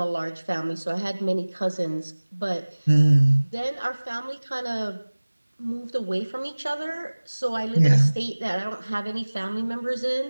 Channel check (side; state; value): both; inverted; correlation -1.00